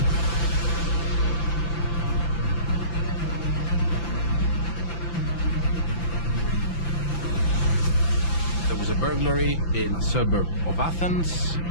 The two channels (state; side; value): late; right; 5.9 ms